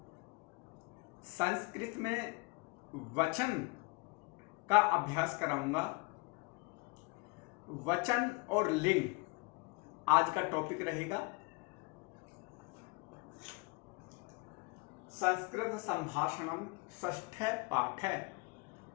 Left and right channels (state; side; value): quieter; right; 29.1 dB